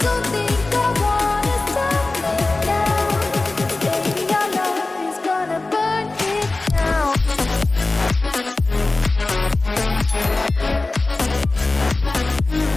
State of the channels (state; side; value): quieter; right; 3.2 dB